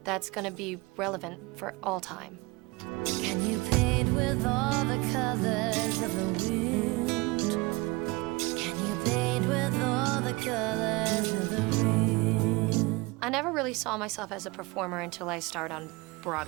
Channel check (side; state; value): left; quieter; 24.3 dB